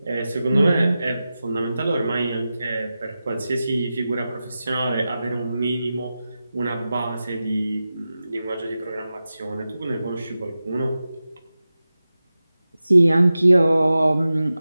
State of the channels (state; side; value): inverted; both; correlation -0.93